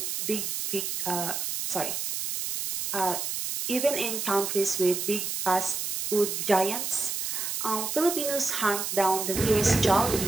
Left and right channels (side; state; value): right; noise; hiss, 3 dB below the sound